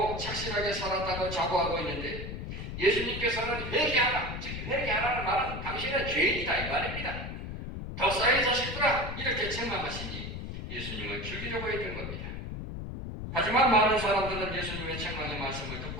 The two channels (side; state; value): left; noise; rumble, 7 dB below the sound